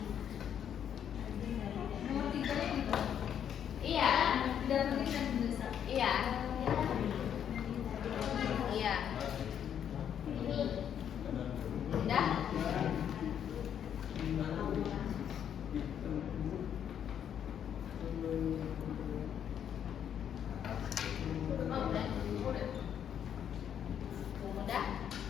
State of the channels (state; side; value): quieter; right; 9.1 dB